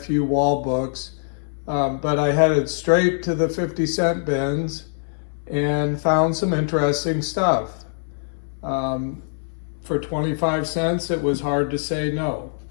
wall books, but I headed straight to the 50-cent bins and found some interesting stuff. For 25 cents, it was hard to say no.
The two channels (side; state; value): right; silent; 63 dB below the other